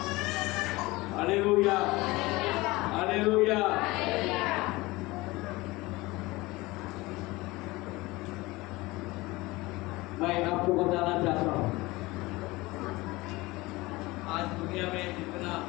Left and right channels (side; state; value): right; quieter; 21.2 dB